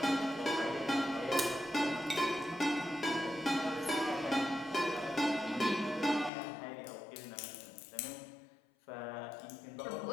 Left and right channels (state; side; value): drops out; right; at 6.3 s